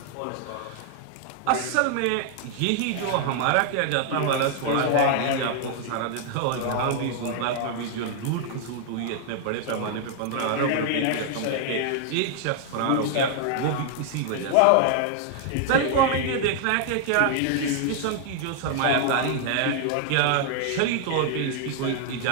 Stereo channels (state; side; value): different; both; correlation 0.00